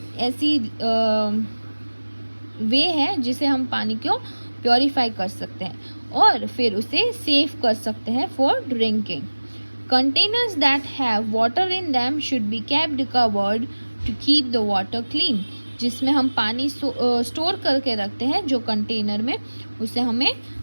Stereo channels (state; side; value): inverted; both; correlation -1.00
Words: ऐसी वे है जिसे हम पानी को प्योरीफाई कर सकते हैं और फिर उसे सेव कर सकते हैं for drinking. Containers that have water in them should be kept covered to keep the water clean. जिसमें हम पानी स्टोर करके रखते हैं जो कंटेनर में, उसे हमें